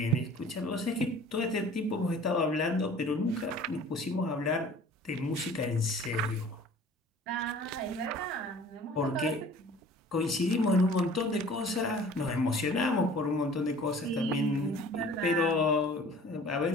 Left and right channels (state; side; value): normal; both; correlation 0.48